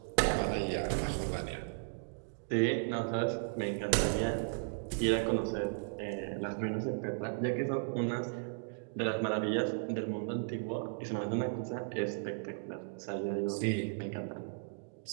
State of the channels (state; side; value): silent; left; digital silence